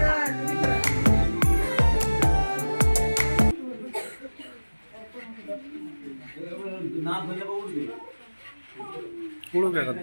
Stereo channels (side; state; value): both; inverted; correlation -1.00